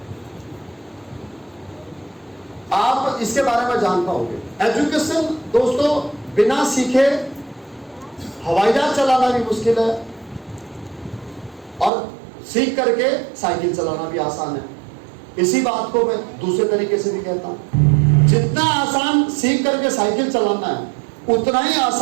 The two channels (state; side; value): drops out; left; at 11.9 s